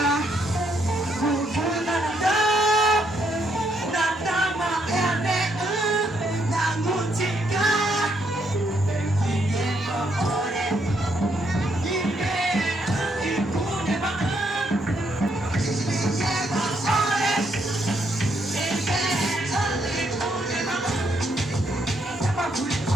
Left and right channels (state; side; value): normal; both; correlation 0.74